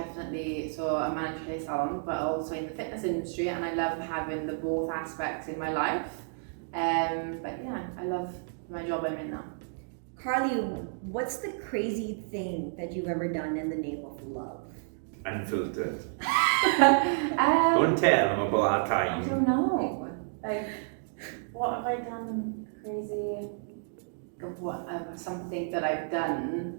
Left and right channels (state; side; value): silent; left; digital silence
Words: so I manage a salon, but also in the fitness industry, and I love having the both aspects in my life. But yeah, I love my job I'm in now. Carly, what's the crazy thing that you've ever done in the name of love? Unfiltered. Don't tell them about our I time. don't know. Like, what have I done crazy? What something that I've